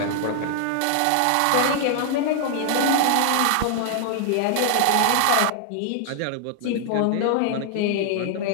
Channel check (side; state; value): both; different; correlation 0.00